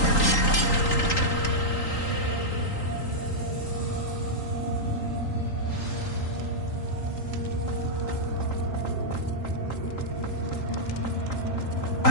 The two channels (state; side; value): late; right; 3.8 ms